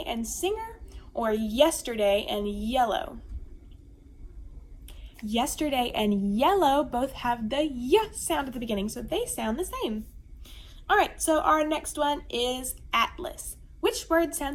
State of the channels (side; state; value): both; identical; correlation 1.00